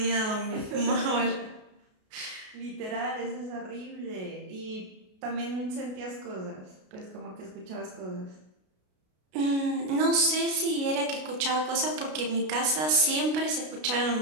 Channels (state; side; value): late; left; 33 ms